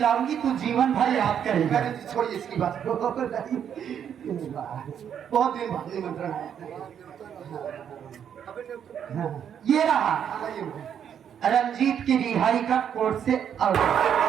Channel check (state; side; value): quieter; left; 8.7 dB